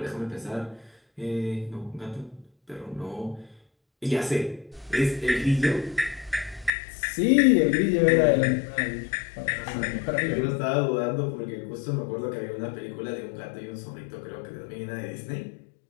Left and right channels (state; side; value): drops out; right; at 6.7 s